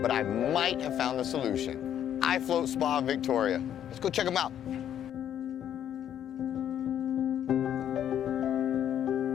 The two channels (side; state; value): right; quieter; 10.1 dB